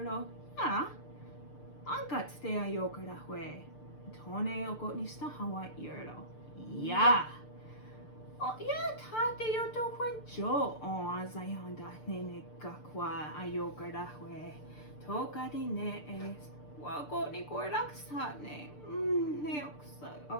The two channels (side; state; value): right; late; 6.7 ms